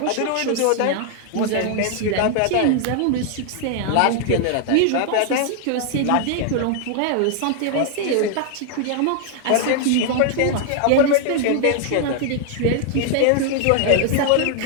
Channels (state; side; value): different; both; correlation 0.00